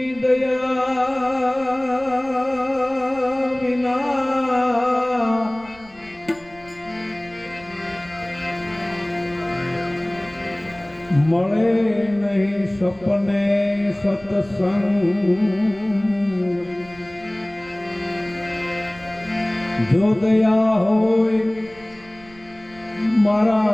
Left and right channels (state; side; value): noise; right; rumble, 24 dB below the sound